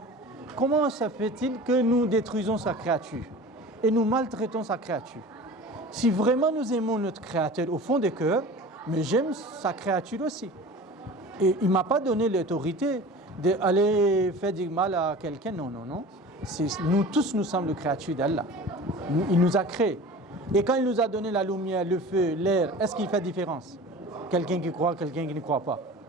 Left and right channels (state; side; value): normal; both; correlation 0.38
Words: comment ça fait-il que nous détruisons sa créature et nous maltraitons sa créature? Si vraiment nous aimons notre Créateur au fond du cœur, mais j'aime sa créature aussi. Et il ne m'a pas donné l'autorité d'aller faire du mal à quelqu'un. Non, non, non. Nous tous, nous sommes les créatures d'Allah. Il nous a créés. Et quand il nous a donné la lumière, le feu, l'air, est-ce qu'il fait différence? Quelqu'un qui croit, quelqu'un qui ne croit pas.